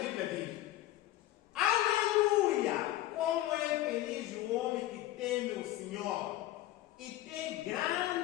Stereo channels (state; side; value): quieter; right; 14.9 dB